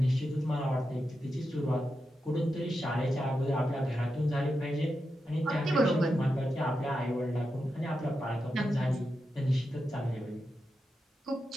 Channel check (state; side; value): normal; both; correlation 0.88